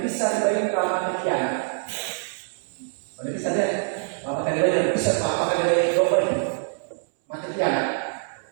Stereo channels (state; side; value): silent; left; 62 dB below the other